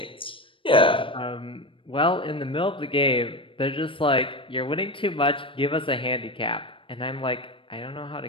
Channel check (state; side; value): late; right; 0.25 ms